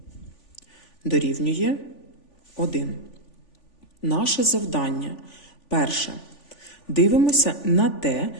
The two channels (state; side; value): late; right; 3.5 ms